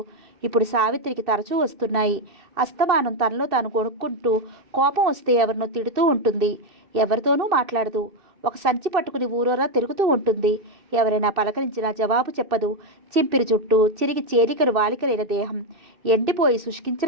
ఇప్పుడు సావిత్రికి తరచూ వస్తున్నాయి. అస్తమానం తనలో తాను కొనుక్కుంటూ కోపం వస్తే ఎవరినో తిడుతూ ఉంటుంది. ఎవరితోనూ మాట్లాడదు. ఒక సంచి పట్టుకుని ఊరోరా తిరుగుతూ ఉంటుంది. ఎవరైనా పలకరించినా జవాబు చెప్పదు. చింపిరి జుట్టు, చిరిగి చేలికలు వాలికలైన దేహం, ఎండిపోయి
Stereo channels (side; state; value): left; late; 2.6 ms